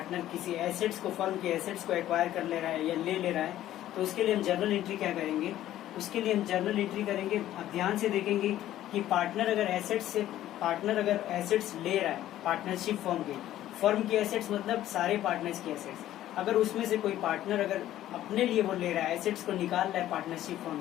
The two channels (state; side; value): quieter; right; 13.2 dB